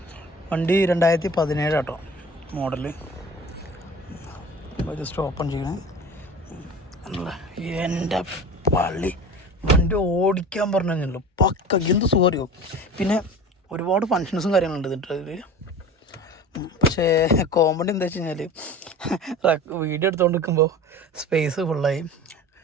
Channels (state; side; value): normal; both; correlation 0.38